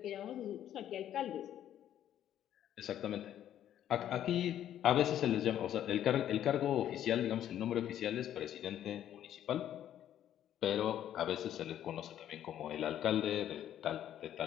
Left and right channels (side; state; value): right; quieter; 11.0 dB